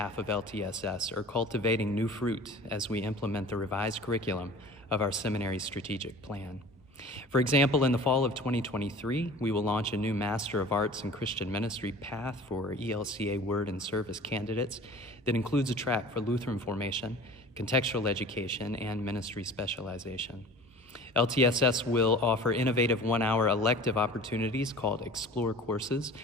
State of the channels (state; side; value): normal; both; correlation 0.42